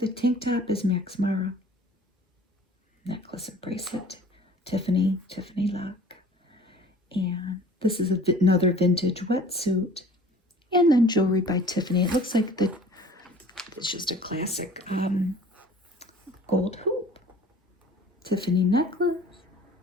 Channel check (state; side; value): normal; both; correlation 0.48